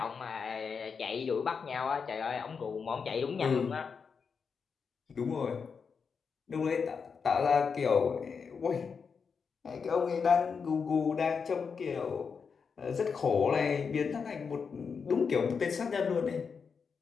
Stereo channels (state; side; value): quieter; right; 5.8 dB